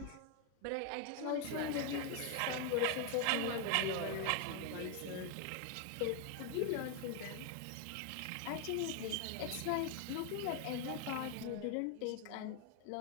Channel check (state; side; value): different; both; correlation 0.01